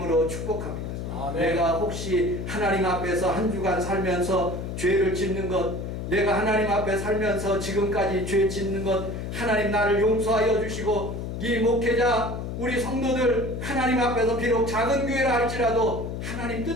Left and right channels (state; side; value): noise; left; hum, 5 dB below the sound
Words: 축복합니다. 아멘. 내가 혹시 하나님 앞에서 한 주간 살면서 죄를 짓는 것, 내가 하나님 앞에 살면서 지금까지 죄 짓는 것, 하나님 나를 용서하여 주시고 이 목회자 우리 성도들 하나님 앞에서 비록 작은 교회라 할지라도 하나님